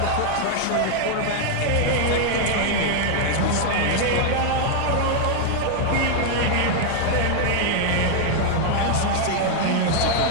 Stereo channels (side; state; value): both; different; correlation 0.00